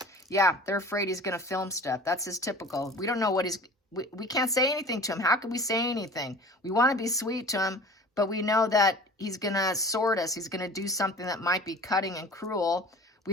Yeah, they're afraid he's going to film stuff. That's his typical. We don't know what he's... We can't say anything to him. How can we say anything? We want to be sweet to him, but we know that he's going to sword us. He's going to do something that might be cutting and cruel. We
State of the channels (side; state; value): both; normal; correlation 0.42